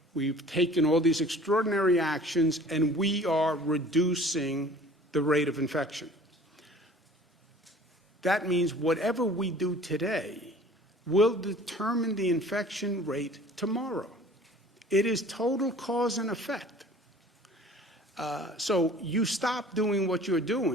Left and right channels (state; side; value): normal; both; correlation 0.48